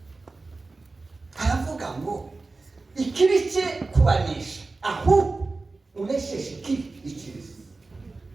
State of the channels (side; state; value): left; quieter; 3.6 dB